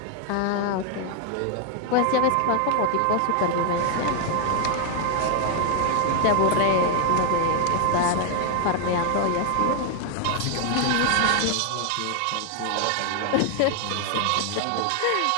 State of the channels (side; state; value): both; different; correlation 0.00